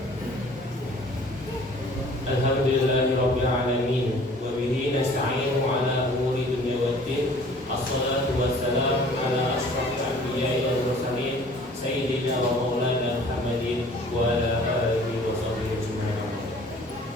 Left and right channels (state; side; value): normal; both; correlation 0.51